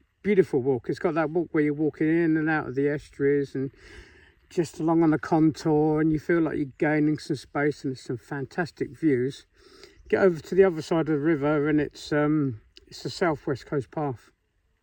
beautiful walk. It's got that walk where you're walking in and out of the estuaries and just along on the contour, and you feel like you're gaining some space, and there's some fantastic views. Get over to the other side of the river, and it's the Southwest Coast Path.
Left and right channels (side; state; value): both; identical; correlation 1.00